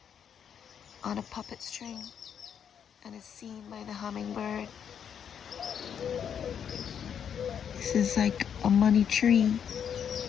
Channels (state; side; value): quieter; right; 8.1 dB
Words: on a puppet string and is seen by the hummingbird. This is like a money tree